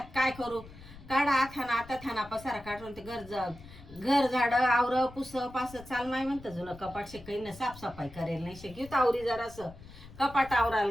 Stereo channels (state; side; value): noise; left; rumble, 18 dB below the sound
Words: काय करू. काढा थाना आता थाना पसारा काढून ते घर झाड आवर पुस पास चाल माय म्हणतं जुनं कपाट काही ना साफसफाई करेल नाही शिकवत आवरी जरासं कपाट